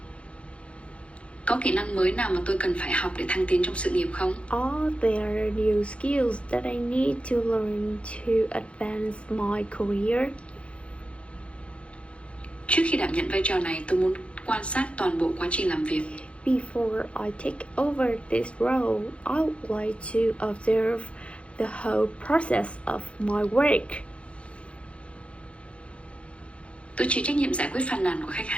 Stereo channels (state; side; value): late; right; 0.061 ms